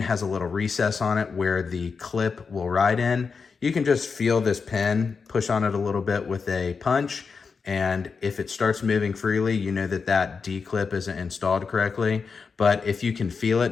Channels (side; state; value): right; quieter; 5.2 dB